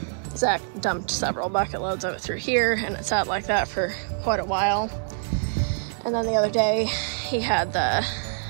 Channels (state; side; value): silent; left; digital silence